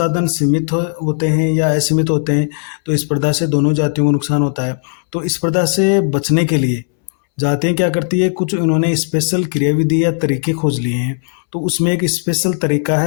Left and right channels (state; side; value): silent; right; 67 dB below the other